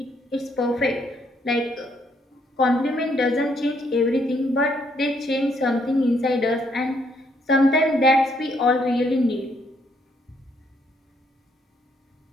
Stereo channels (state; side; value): normal; both; correlation 0.71